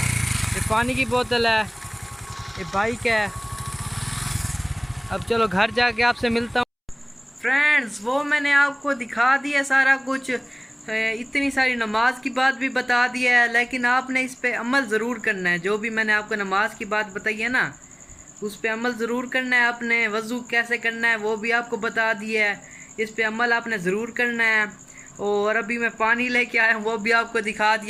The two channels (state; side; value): identical; both; correlation 1.00